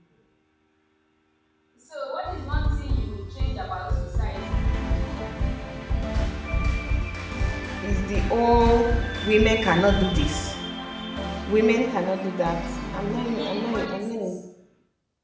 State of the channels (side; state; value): both; identical; correlation 1.00